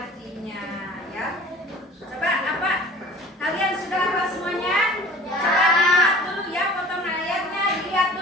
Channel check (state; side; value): normal; both; correlation 0.44